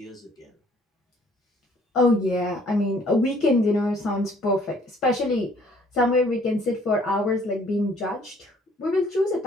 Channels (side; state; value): both; normal; correlation 0.59